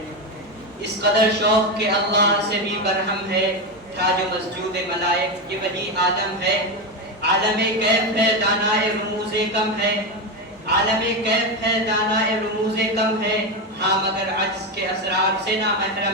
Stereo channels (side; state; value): both; normal; correlation 0.13